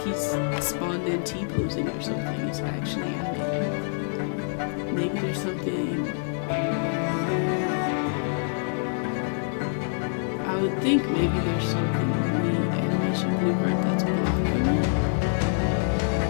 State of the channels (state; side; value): silent; right; digital silence